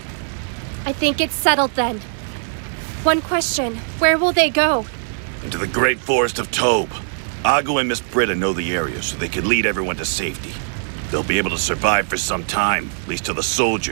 I think it's settled then. One question, where will they go? Into the great forest of Tobe. Agu and Miss Britta know the area, so they can lead everyone to safety. They'll be able to survive for some time, at least till the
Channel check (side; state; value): left; silent; digital silence